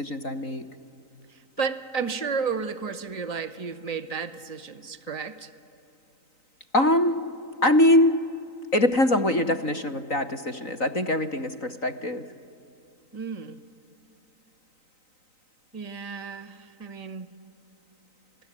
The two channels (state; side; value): late; right; 3.9 ms